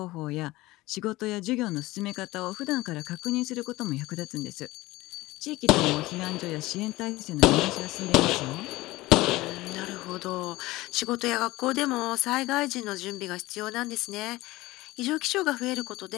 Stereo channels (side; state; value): right; quieter; 19.2 dB